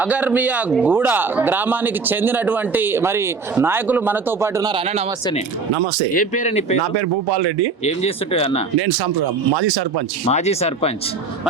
అగర్మియా గూడ గ్రామానికి చెందినటువంటి మరి నాయకులు మనతో పాటు ఉన్నారు. అన్న నమస్తేనే. నమస్తే. ఏ పేరు నీ పేరు? నా పేరు భూపాల్ రెడ్డి. ఏం చేస్తుంటే అన్న? నేను మాజీ సర్పంచ్.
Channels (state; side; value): quieter; left; 4.7 dB